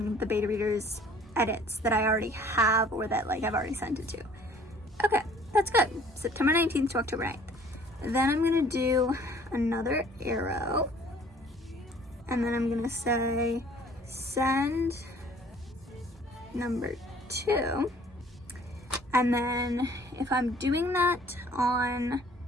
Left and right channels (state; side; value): normal; both; correlation 0.54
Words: the beta readers edits that I already have, or that like I've already sent it to. Okay, that's good. September 19th to October 9th. Then I'm gonna do another arrow, and then I'm gonna say send number 2. And then if I'm doing that on